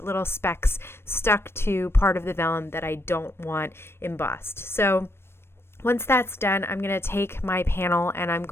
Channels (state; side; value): late; right; 0.12 ms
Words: little specks stuck to part of the vellum that I don't want embossed. So once that's done, I'm going to take my panel and I'm